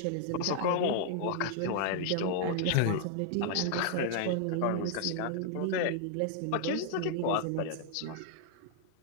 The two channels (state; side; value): different; both; correlation -0.01